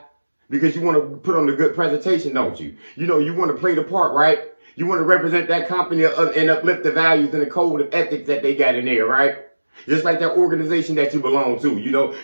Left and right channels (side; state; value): both; inverted; correlation -1.00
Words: because you want to put on a good presentation, don't you? You want to play the part, right? You want to represent that company and uplift the values and the code of ethics that they got in there, right? Just like that organization that you belong to,